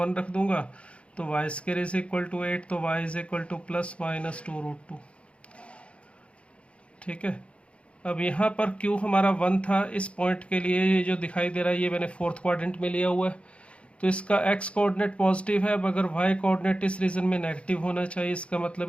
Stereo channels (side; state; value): right; late; 0.060 ms